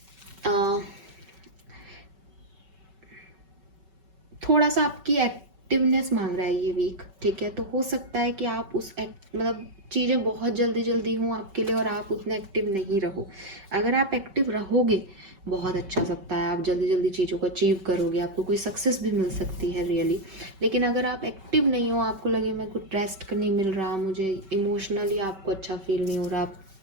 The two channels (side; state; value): left; late; 5.2 ms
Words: थोड़ा सा आपकी एक्टिवनेस मांग रहा है ये वीक, ठीक है, तो हो सकता है कि आप उस मतलब चीज़ें बहुत जल्दी जल्दी हों आपके लिए और आप उतने एक्टिव नहीं रहो। अगर आप एक्टिव रहोगे, बहुत अच्छा सप्ताह है, आप जल्दी जल्दी चीज़ों को अचीव करोगे, आपको कोई सक्सेस भी मिल सकती है रियली। लेकिन अगर आप एक्टिव नहीं हो, आपको लगे मेरे को रेस्ट नहीं मिल रहा, मुझे इमोशनली आपको अच्छा फील नहीं हो रहा,